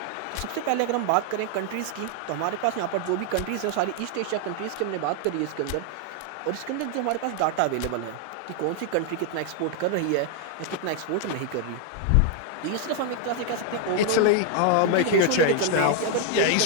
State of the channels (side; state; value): both; different; correlation 0.00